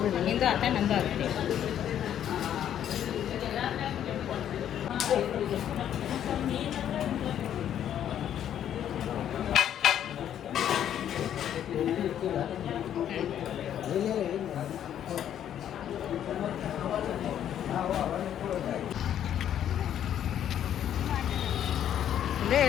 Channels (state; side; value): quieter; right; 10.2 dB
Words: ಬಿಡಿ, ನಿಂದು ಆತ ನಂದು ಆಗುತ್ತೆ. ಇಲ್ಲೇ